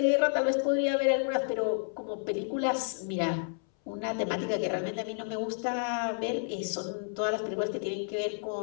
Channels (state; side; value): silent; right; 57 dB below the other